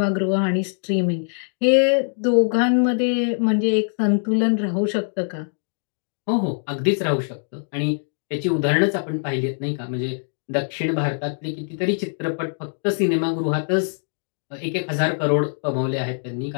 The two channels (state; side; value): silent; right; digital silence